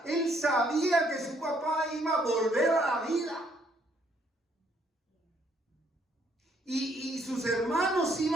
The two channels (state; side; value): normal; both; correlation 0.68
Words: Él sabía que su papá iba a volver a la vida. Y sus hermanos